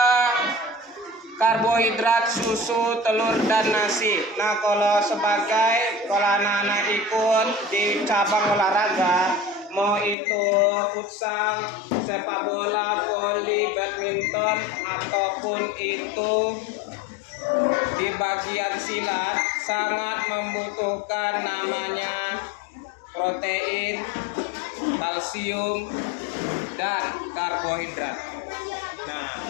karbohidrat, susu, telur, dan nasi. Nah, kalau anak-anak ikut di cabang olahraga, mau itu futsal, sepak bola, voli, badminton, ataupun itu di bagian silat, sangat membutuhkan namanya protein, kalsium, dan karbohidrat. Nah,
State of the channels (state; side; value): drops out; right; at 10.2 s